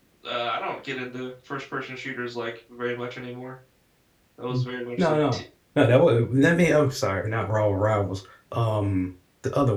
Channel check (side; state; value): both; identical; correlation 1.00